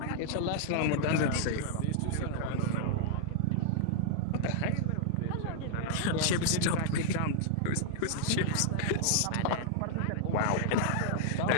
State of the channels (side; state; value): both; different; correlation -0.01